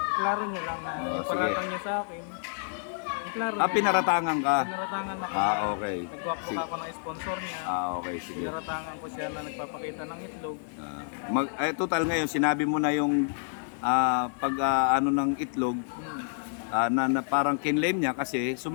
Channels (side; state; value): right; silent; digital silence